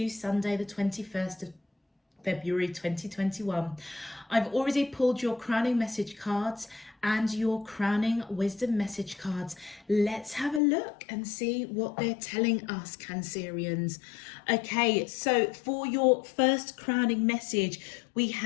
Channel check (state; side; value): drops out; right; at 10.6 s